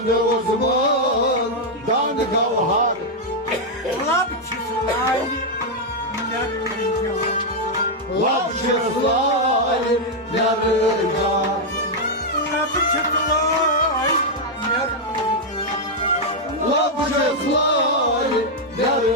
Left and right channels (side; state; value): both; normal; correlation -0.02